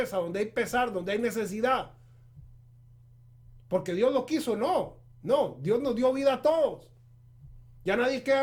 donde hay pesar, donde hay necesidad. Porque Dios lo quiso, no, Dios nos dio vida a todos. Ya nadie queda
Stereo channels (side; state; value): both; identical; correlation 1.00